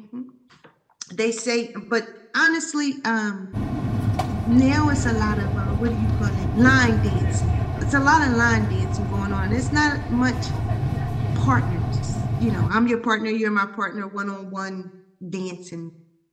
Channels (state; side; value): identical; both; correlation 1.00